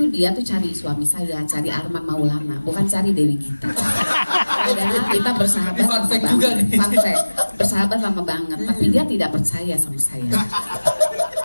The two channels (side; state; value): both; inverted; correlation -1.00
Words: dia tuh cari suami saya, cari Arman Maulana, bukan cari Dewi Gita. Padahal kita bersahabat Ini fun lama fact banget. juga nih. Fun fact, bersahabat lama banget, tapi dia tidak percaya sama saya.